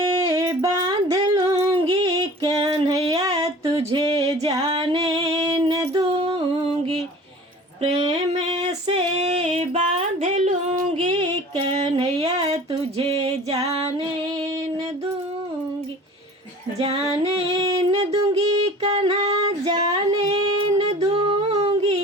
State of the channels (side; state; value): both; normal; correlation 0.43